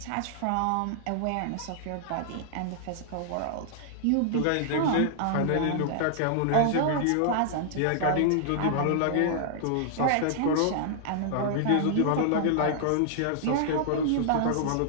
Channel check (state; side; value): different; both; correlation -0.01